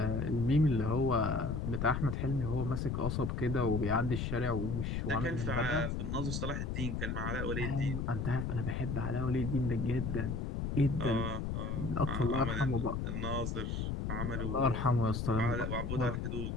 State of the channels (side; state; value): left; noise; rumble, 2 dB below the sound